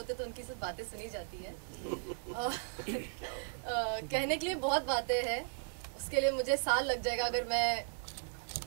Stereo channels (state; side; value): silent; left; digital silence